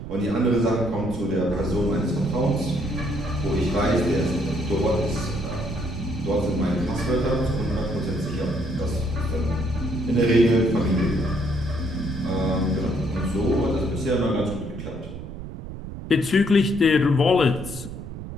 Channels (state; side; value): noise; right; rumble, 10 dB below the sound